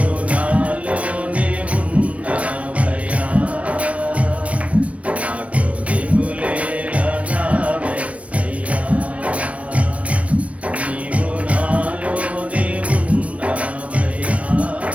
నాలోనే ఉన్నావయ్యా, నాకు దిగులేలా నా యేసయ్యా. నీవు నాలోనే ఉన్నావయ్యా,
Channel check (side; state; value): left; late; 0.064 ms